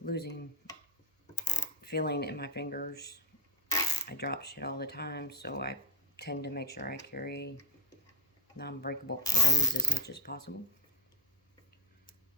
losing feeling in my fingers. I drop shit all the time, so I tend to make sure I carry non-breakable items as much as possible.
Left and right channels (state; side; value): normal; both; correlation 0.04